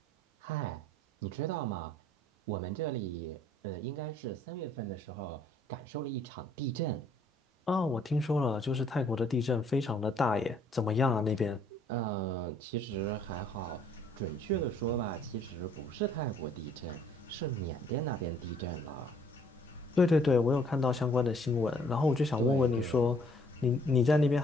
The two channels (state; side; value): normal; both; correlation 0.61